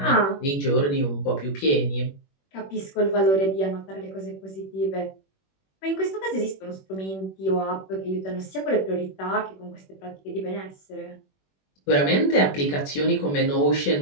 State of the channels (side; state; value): right; late; 21 ms